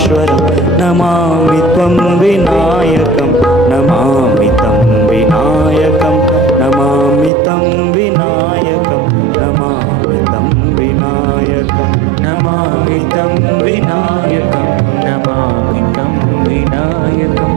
नमामि त्वं विनायकं नमामि तं विनायकं नमामि तं विनायकं नमामि तं विनायकं नमामि तं विनायकं नमामि तं विनायकं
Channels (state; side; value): drops out; left; at 7.3 s